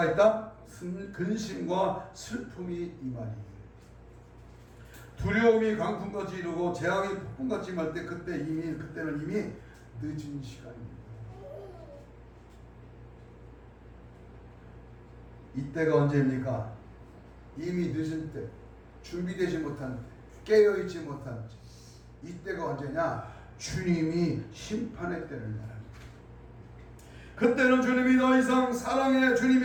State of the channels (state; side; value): identical; both; correlation 1.00